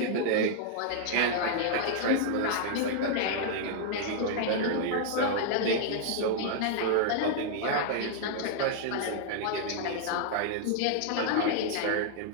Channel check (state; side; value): different; both; correlation -0.01